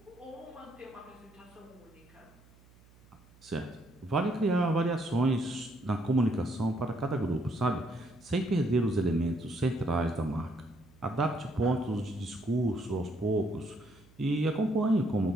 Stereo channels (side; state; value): right; noise; hum, 27 dB below the sound